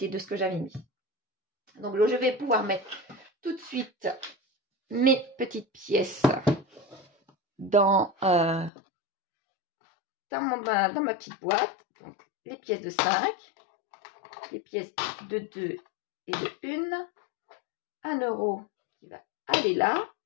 de ce que j'avais mis. Donc, je vais pouvoir mettre tout de suite mes petites pièces dans ma petite boîte. Donc, les pièces de 5, les pièces de 2 et de 1, 1 euro qui va aller là,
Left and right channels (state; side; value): drops out; right; at 8.7 s